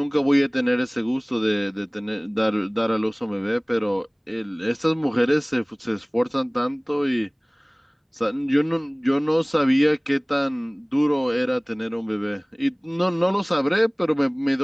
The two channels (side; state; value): both; identical; correlation 1.00